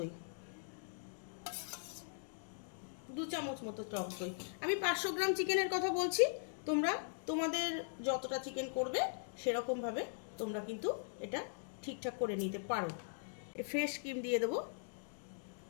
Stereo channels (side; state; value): right; silent; digital silence